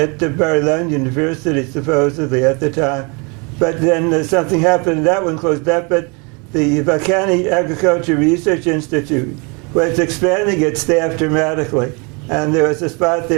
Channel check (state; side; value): quieter; left; 31.7 dB